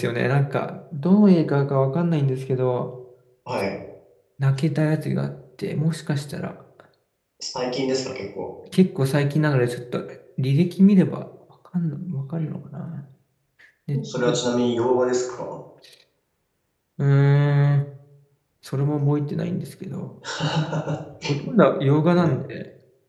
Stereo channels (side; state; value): both; identical; correlation 1.00